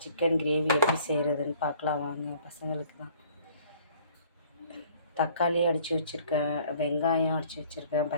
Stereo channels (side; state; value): both; inverted; correlation -0.56